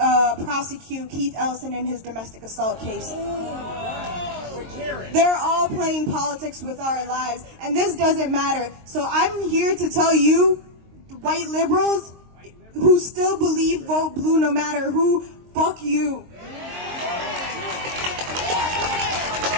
prosecute Keith Ellison in his domestic assault case. They're all playing politics with our lives, and this doesn't matter. So I'm here to tell you, white liberals who still believe vote blue no matter who, fuck you.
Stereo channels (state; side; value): late; left; 22 ms